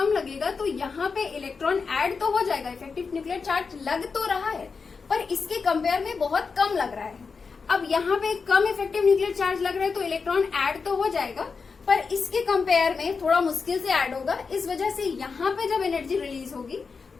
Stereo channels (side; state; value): right; quieter; 5.0 dB